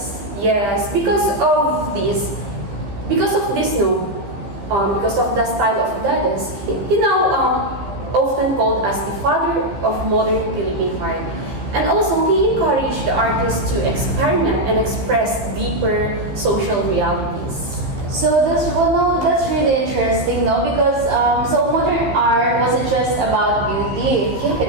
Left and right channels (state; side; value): late; left; 15 ms